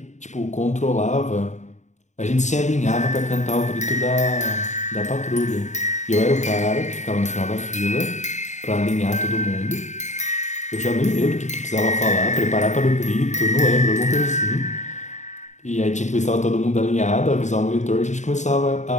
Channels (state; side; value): late; right; 0.34 ms